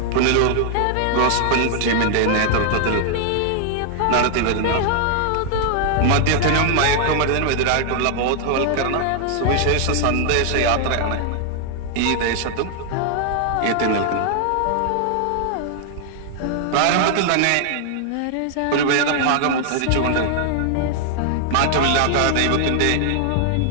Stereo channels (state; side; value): different; both; correlation 0.00